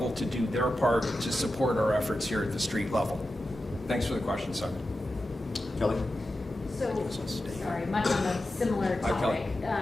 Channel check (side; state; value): both; normal; correlation 0.92